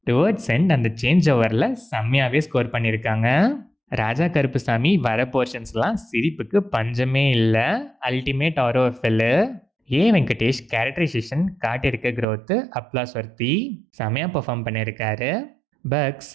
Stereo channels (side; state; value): left; drops out; at 12.2 s